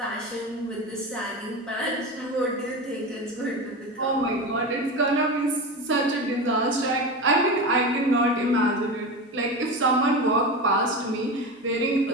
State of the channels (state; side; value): normal; both; correlation 0.24